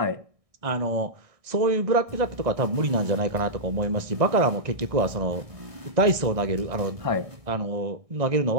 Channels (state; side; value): late; left; 1.6 ms